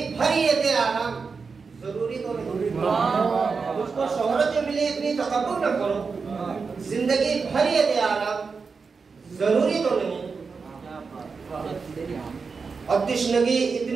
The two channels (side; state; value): left; quieter; 5.0 dB